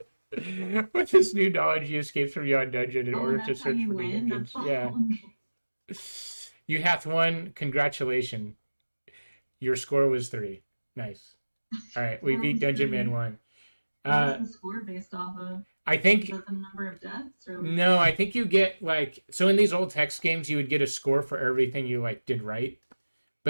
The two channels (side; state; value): both; inverted; correlation -1.00